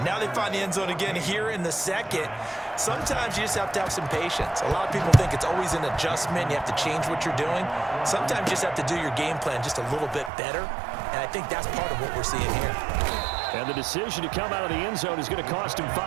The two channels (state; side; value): drops out; left; at 10.3 s